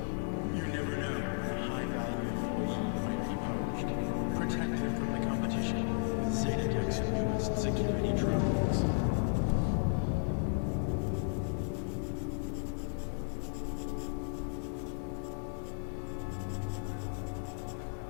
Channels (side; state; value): right; silent; digital silence